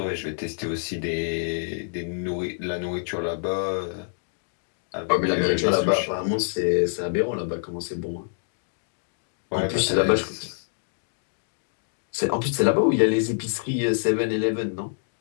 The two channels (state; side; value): silent; right; digital silence